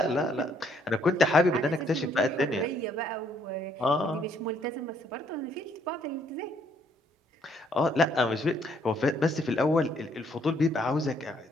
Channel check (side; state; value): both; normal; correlation 0.67